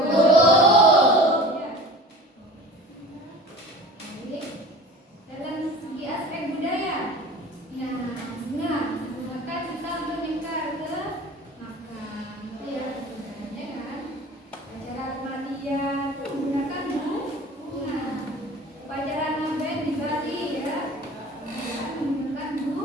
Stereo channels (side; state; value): both; normal; correlation 0.40